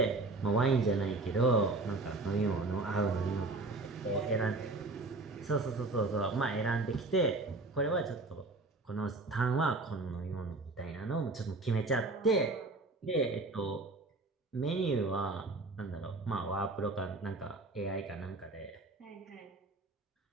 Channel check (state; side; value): quieter; left; 3.2 dB